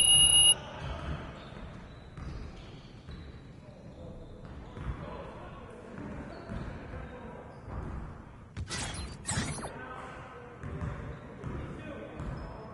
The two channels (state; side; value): identical; both; correlation 1.00